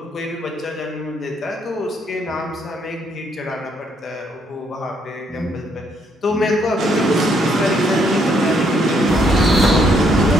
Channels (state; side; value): normal; both; correlation 0.71